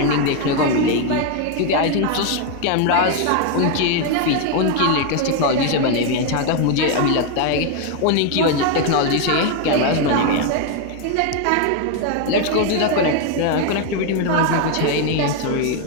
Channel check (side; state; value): both; different; correlation 0.01